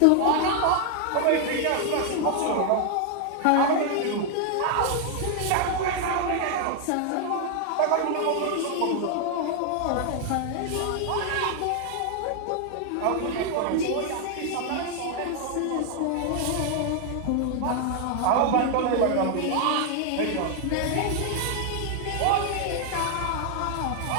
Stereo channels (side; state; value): both; different; correlation 0.00